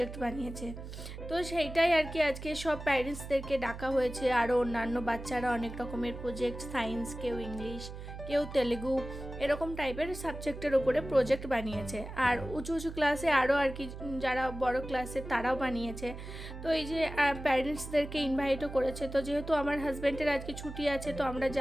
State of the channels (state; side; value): noise; right; hum, 10 dB below the sound